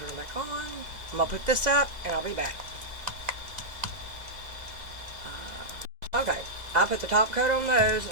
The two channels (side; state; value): left; late; 2.0 ms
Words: it back on. I'm going to put this up and I'll be back. Okay, I put the top coat on those,